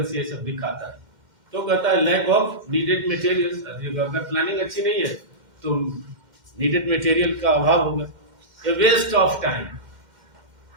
ये सब दिखाता है। तो कहता है लैक ऑफ नीडेड मटेरियल्स, अगर प्लानिंग अच्छी नहीं है तो नीडेड मटेरियल का अभाव होगा। ए वेस्ट ऑफ टाइम,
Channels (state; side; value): late; left; 2.1 ms